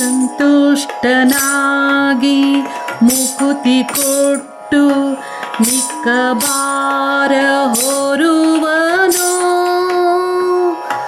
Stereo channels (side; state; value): both; identical; correlation 1.00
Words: ಮುಕುತಿ ಕೊಟ್ಟು ಮಿಕ್ಕ ಭಾರ ಹೊರುವನು.